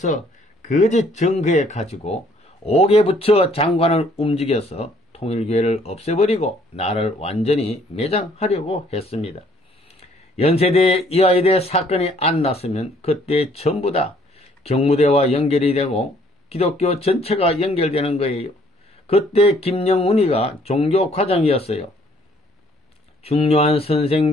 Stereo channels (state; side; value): normal; both; correlation 0.62